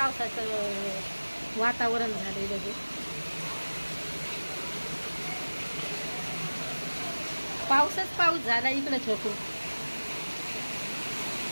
वातावरण झालंय लगे. पाऊस झाला इकडं छोटू.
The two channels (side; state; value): both; inverted; correlation -1.00